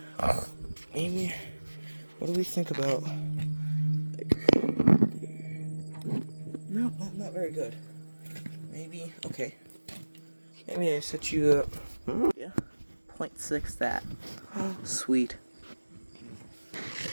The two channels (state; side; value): inverted; both; correlation -1.00